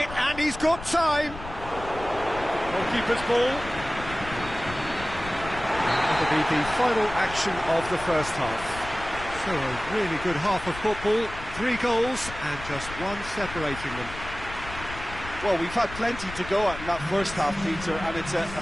and he's got time. Goalkeeper's ball. That'll be the final action of the first half. So a really good half of football, 3 goals and just one separating them. Well, we've had plenty to go at in that first half, Peter, and it's a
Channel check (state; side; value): noise; left; rumble, 12 dB below the sound